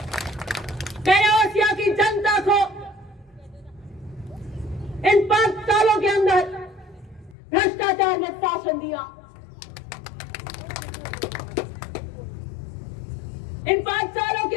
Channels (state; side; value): drops out; right; at 7.4 s